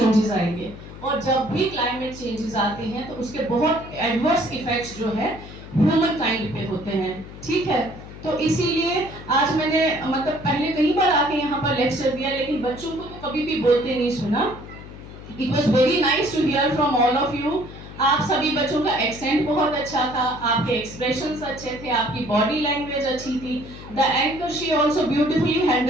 आएंगे, और जब भी क्लाइमेट चेंजेस आते हैं तो उसके बहुत एडवर्स इफेक्ट्स जो है ह्यूमन काइंड पे होते हैं। ठीक है, तो इसीलिए आज मैंने मतलब पहले कई बार आके यहाँ पर लेक्चर दिया, लेकिन बच्चों को तो कभी भी बोलते नहीं सुना। It was very nice to hear from all of you. आप सभी बच्चों का एक्सेंट बहुत अच्छा था, आपके एक्सप्रेशंस अच्छे थे, आपकी बॉडी लैंग्वेज अच्छी थी. The anchor she also beautifully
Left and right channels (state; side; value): noise; left; hum, 14 dB below the sound